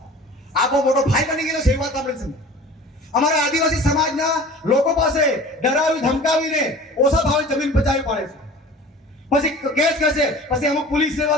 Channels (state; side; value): normal; both; correlation 0.41